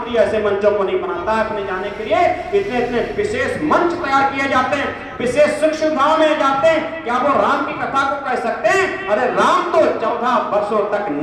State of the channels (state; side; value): identical; both; correlation 1.00